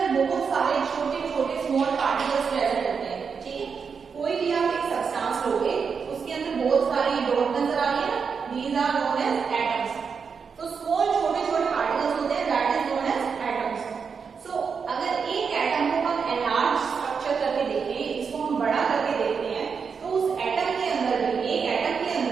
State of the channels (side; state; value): left; quieter; 5.9 dB